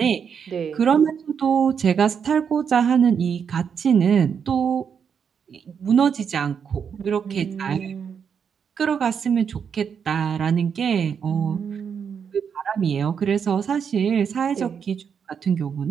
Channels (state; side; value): quieter; left; 7.0 dB